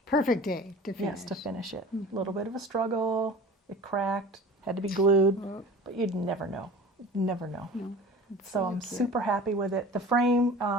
Perfect day to finish. Yes, to finish it. A little bit of a struggle. It cracked. Had to be glued. But you'd never know. Never know. No, it's So really I'm cute. super happy with it. The frame,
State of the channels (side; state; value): both; normal; correlation 0.40